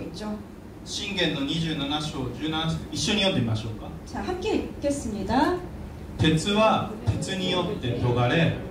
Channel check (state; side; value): identical; both; correlation 1.00